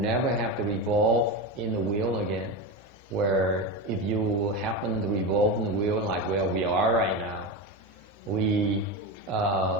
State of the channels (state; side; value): normal; both; correlation 0.19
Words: have to revolve in the wheel again. Where if you happen to revolve in the wheel like where we are right now, we